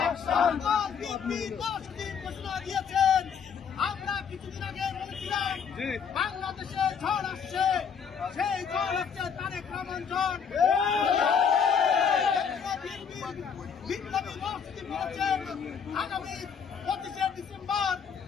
বিএনপি 10 দিন ঘোষণা দিয়েছেন। আমরা কিছুদিন আগে বলেছিলাম বাংলাদেশে ঝড় আসছে, সেই ঝড় হচ্ছে তারেক রহমান ঝড়। বিপ্লবী মসজিদ বলেছেন আগামী 25শে ডিসেম্বর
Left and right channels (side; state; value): right; quieter; 6.8 dB